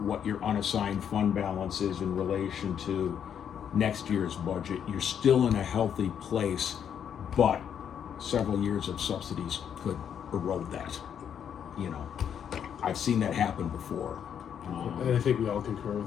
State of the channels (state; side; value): quieter; right; 8.5 dB